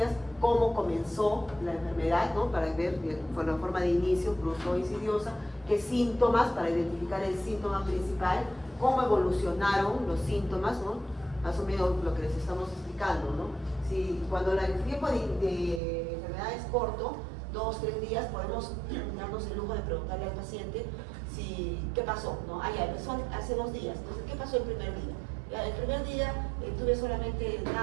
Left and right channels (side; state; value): left; drops out; at 15.8 s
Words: ¿Cómo comenzó la enfermedad? ¿No? Para ver por la forma de inicio, brusco o insidiosa. ¿Qué síntomas? Para identificar el síntoma principal. ¿Cómo evolucionaron los síntomas? ¿No? Más o menos lo que les estamos explicando, ¿no? Si cuando el tiempo de enfermedad es corto, 2 o 3 días, podemos darnos el lujo de preguntarle al paciente qué pasó, ¿no? Ya empezó hace 2 días, entonces, ¿qué pasó el primer día? Ya, el primer día tuve solamente